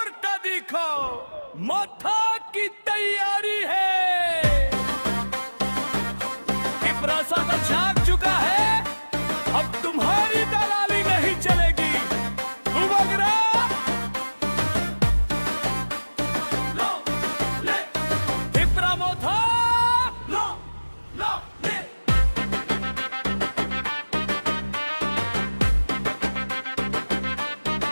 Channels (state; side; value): inverted; both; correlation -1.00